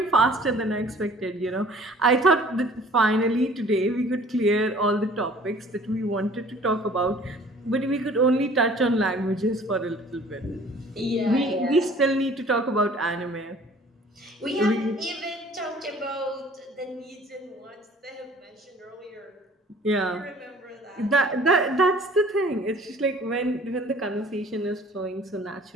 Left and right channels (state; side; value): normal; both; correlation 0.51